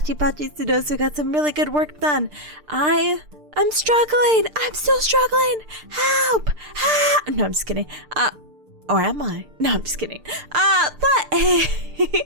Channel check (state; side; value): late; left; 6.7 ms